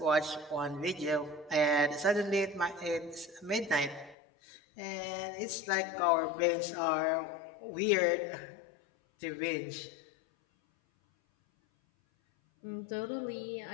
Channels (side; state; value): right; drops out; at 4.2 s